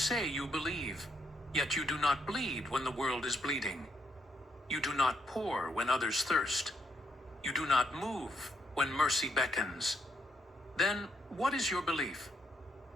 you believe, yet you do not bleed when the world is bleeding. You do not pour when others thirst. You do not move when mercy beckons. Then what is your belief?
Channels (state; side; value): normal; both; correlation 0.75